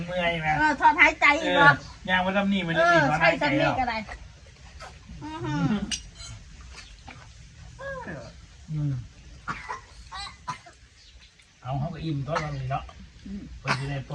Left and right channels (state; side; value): identical; both; correlation 1.00